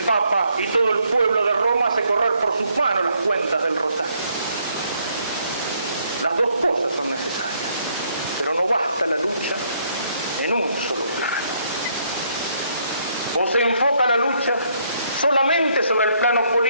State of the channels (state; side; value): inverted; both; correlation -0.70